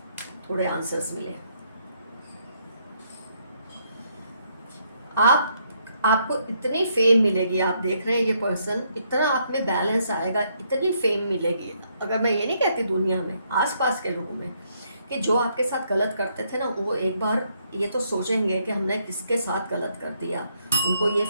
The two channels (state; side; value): inverted; both; correlation -0.73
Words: थोड़े आंसर्स मिले। आप आपको इतनी फेम मिलेगी, आप देख रहे हैं ये पर्सन, इतना आप में बैलेंस आएगा, इतनी फेम मिलेगी। अगर मैं ये नहीं कहती दुनिया में, आसपास के लोगों में, कि जो आपके साथ गलत करते थे ना, वो एक बार ये तो सोचेंगे कि हमने किसके साथ गलत कर दिया। उनको ये